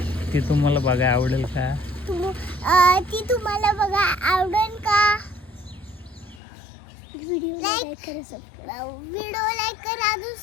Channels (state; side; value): drops out; right; at 6.4 s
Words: ती तुम्हाला बघायला आवडेल का? ती तुम्हाला बघा आवडेल का? व्हिडिओ लाईक करा, अजून